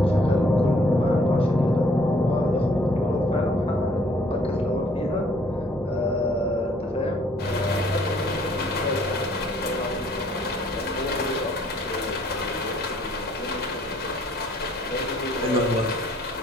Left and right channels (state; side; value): normal; both; correlation 0.62